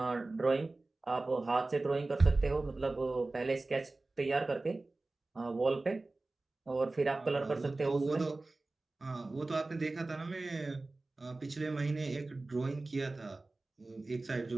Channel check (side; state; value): left; quieter; 3.2 dB